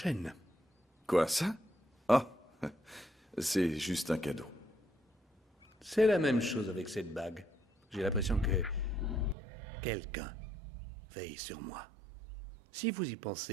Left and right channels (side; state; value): left; drops out; at 9.3 s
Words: Quoi, ça? Ah, c'est juste un cadeau. C'est la même chose avec cette bague. J'ai l'impression que quelqu'un veille sur moi. Si vous y